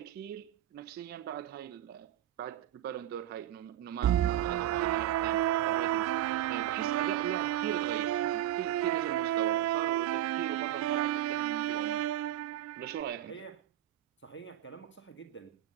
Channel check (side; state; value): left; quieter; 12.3 dB